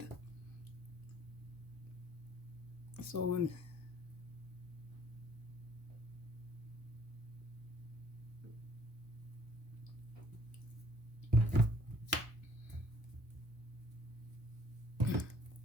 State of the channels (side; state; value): left; late; 1.1 ms